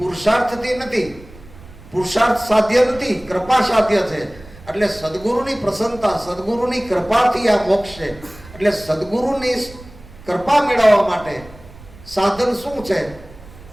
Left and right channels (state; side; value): noise; right; rumble, 20 dB below the sound